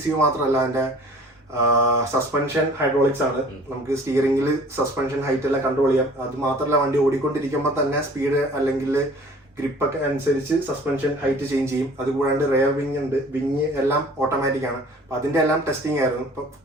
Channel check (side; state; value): both; normal; correlation 0.49